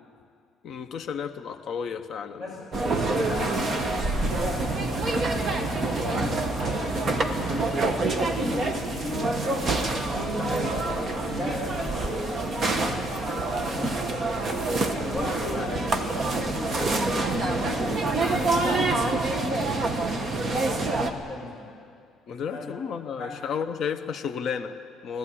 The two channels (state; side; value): normal; both; correlation 0.69